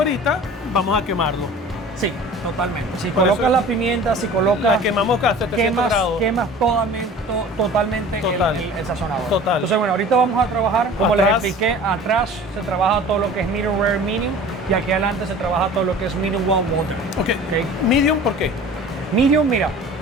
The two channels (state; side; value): normal; both; correlation 0.42